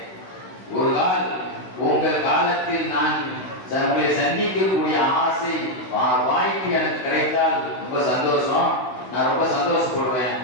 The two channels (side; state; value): right; late; 16 ms